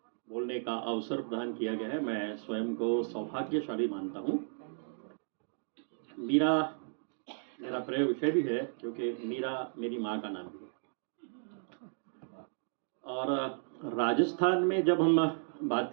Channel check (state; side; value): silent; left; digital silence